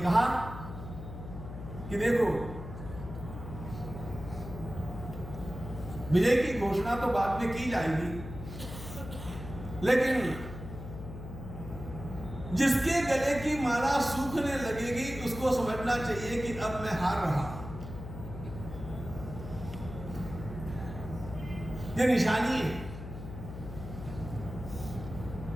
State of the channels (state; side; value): noise; left; hum, 10 dB below the sound